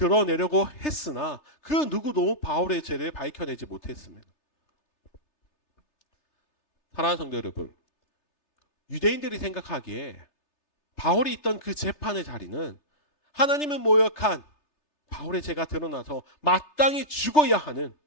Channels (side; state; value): right; late; 3.3 ms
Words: 했으나 그 누구도 바울의 죄를 밝혀내지 못했습니다. 사랑하는 성도 여러분, 유대인들이 생각하기에 바울이 있던 그 재판의 자리는 하나님을 모욕한 바울의 죄가 드러나서 마땅히 죽어야 하는